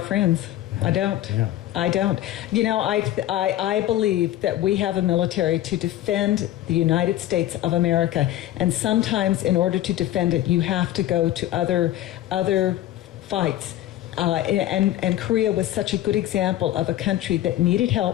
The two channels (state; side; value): quieter; right; 13.7 dB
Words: friends. I don't. Yeah. I don't. You know, I believe that we have a military to defend the United States of America, and sometimes in order to defend it, you have to go to other fights. And Korea was such a good example of a country that needed